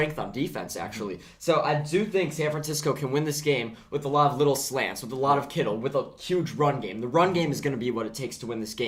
on defense, actually. So I do think San Francisco can win this game with a lot of little slants, with a lot of Kittle, with a huge run game. The run game is going to be what it takes to win this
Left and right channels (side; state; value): both; identical; correlation 1.00